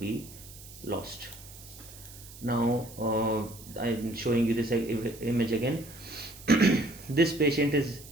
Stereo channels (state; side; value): noise; right; hiss, 18 dB below the sound